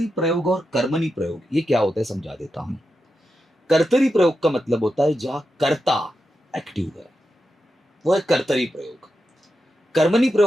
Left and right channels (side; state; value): both; normal; correlation 0.88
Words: प्रयोग और कर्मणी प्रयोग ये क्या होता है समझा देता हूं। कर्तरी प्रयोग का मतलब होता है जहां कर्ता एक्टिव है, वो है कर्तरी प्रयोग। कर्मणी